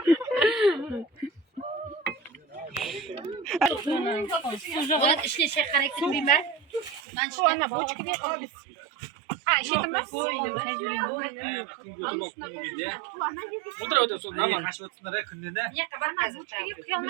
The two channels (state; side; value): drops out; left; at 7.0 s